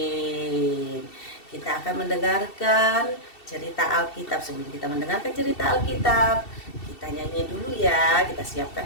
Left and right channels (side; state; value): right; late; 2.7 ms